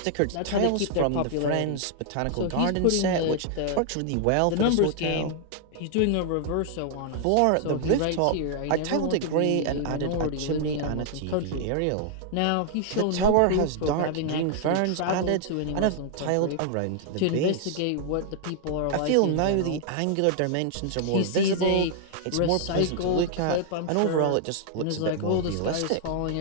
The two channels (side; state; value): both; different; correlation 0.00